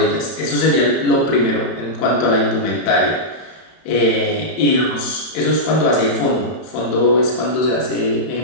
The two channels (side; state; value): right; late; 31 ms